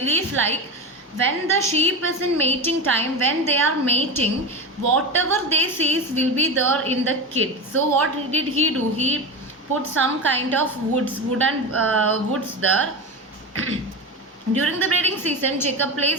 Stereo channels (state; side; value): normal; both; correlation 0.21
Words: like when the sheep is in mating time, when they are mating, whatever they sees will be there in the kid. So what did he do? He put some kind of wooden woods there. During the breeding season, Jacob